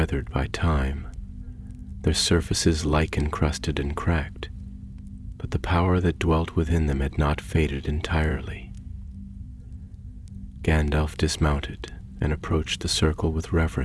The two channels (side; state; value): both; identical; correlation 1.00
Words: by time, their surfaces lichen-crusted and cracked, but the power that dwelt within them had not faded entirely. Gandalf dismounted and approached the circle with